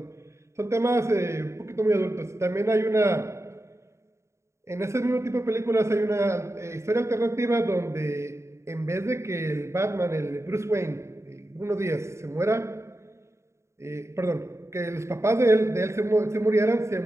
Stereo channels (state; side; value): late; left; 0.14 ms